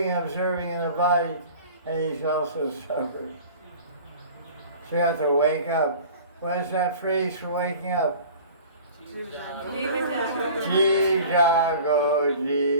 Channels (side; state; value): both; inverted; correlation -0.43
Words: and observing in the body, and he's also suffering. So you have to wake up. What is that phrase for waking up? Jeev jago,